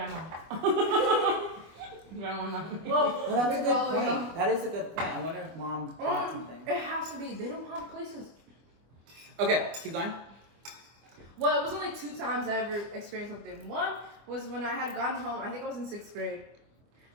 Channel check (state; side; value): late; left; 25 ms